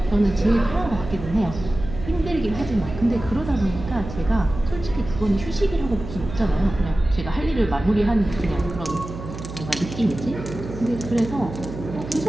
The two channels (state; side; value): noise; right; hum, 10 dB below the sound